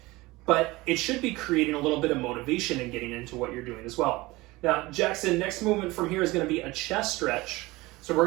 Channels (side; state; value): left; quieter; 21.0 dB